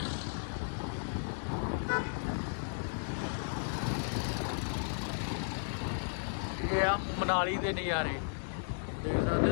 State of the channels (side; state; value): right; silent; digital silence